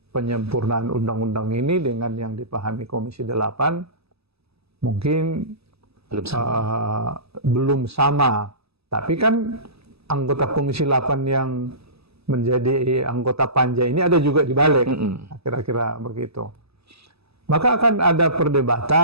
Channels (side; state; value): left; late; 0.78 ms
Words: penyempurnaan undang-undang ini dengan yang dipahami Komisi 8 mungkin belum sama. Tapi kan anggota Komisi 8 yang menjadi anggota panja ini ada juga di Balik, kira-kira begitu. Maka akan ada